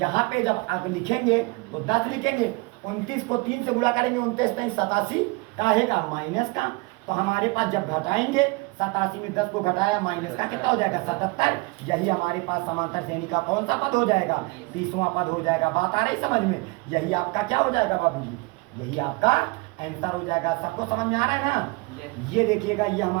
पे जब आप लिखेंगे तो 10 लिखेंगे, 29 को 3 से गुणा करेंगे 29 नहीं 87 का है का माइनस का। तो हमारे पास जब घटाएंगे 87 में 10 को घटाया माइनस का कितना हो जाएगा 77। यही हमारे पास समांतर श्रेणी का कौन सा पद हो जाएगा 30वां पद हो जाएगा। बात आ रही समझ में? यही आपका क्या हो जाएगा बाबूजी, यही आपका आंसर हो जाएगा। सबको समझ में आ रहा है ना? ये देखिएगा ये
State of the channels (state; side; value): quieter; left; 26.5 dB